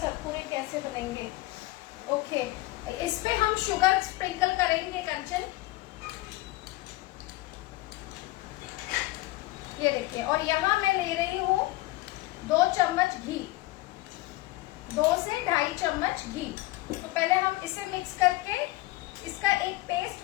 कैसे बनेंगे? ओके, इस पे हम शुगर स्प्रिंकल करेंगे कंचन। ये देखिए, और यहाँ मैं ले रही हूँ 2 चम्मच घी, 2 से 2.5 चम्मच घी। तो पहले हम इसे मिक्स करके इसका एक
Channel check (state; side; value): quieter; right; 19.2 dB